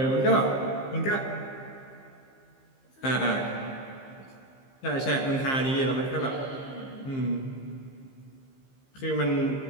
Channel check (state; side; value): late; right; 15 ms